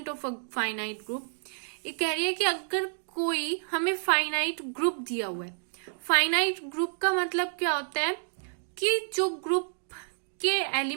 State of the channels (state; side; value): silent; left; digital silence